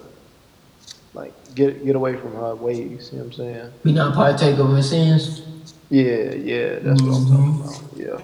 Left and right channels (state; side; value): identical; both; correlation 1.00